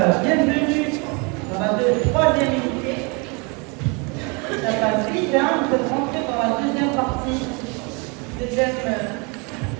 dans la troisième unité. Ça passe vite, hein, on peut rentrer dans la deuxième partie,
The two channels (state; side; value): quieter; left; 31.4 dB